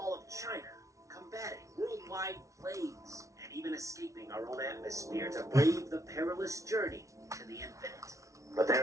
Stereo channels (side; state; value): left; late; 0.15 ms